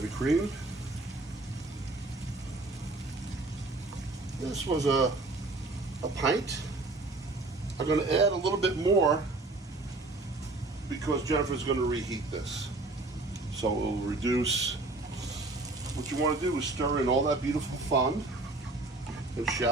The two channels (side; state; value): left; quieter; 3.1 dB